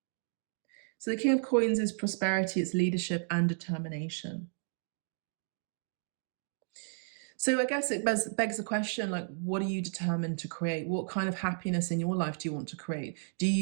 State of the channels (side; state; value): left; silent; digital silence